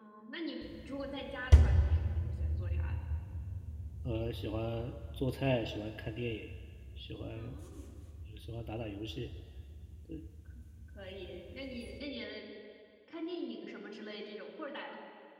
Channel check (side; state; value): both; identical; correlation 1.00